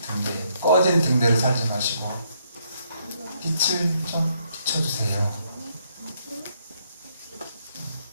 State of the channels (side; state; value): both; inverted; correlation -0.73